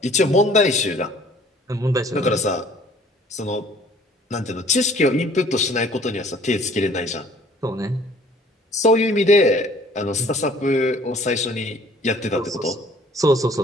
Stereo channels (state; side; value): normal; both; correlation 0.56